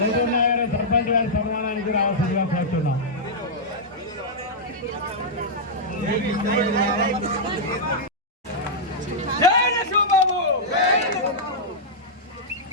ఏటూరు సర్పంచ్ గారి సన్మానానికి రావాల్సిందిగా కోరుతున్నాం.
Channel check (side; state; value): both; normal; correlation -0.09